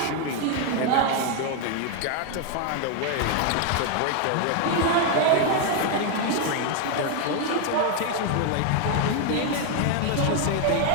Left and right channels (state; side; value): different; both; correlation 0.01